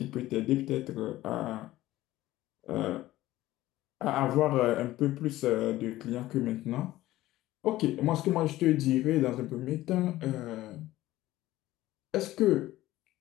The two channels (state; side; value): quieter; right; 16.1 dB